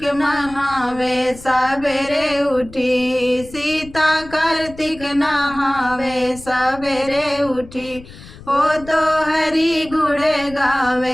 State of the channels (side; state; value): left; noise; rumble, 18 dB below the sound